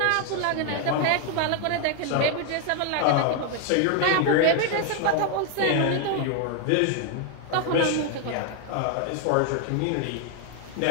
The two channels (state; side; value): different; both; correlation 0.00